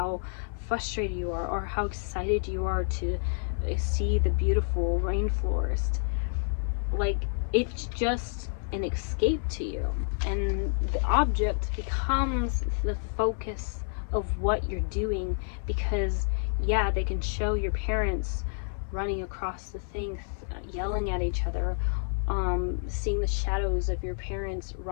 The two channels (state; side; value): silent; right; 58 dB below the other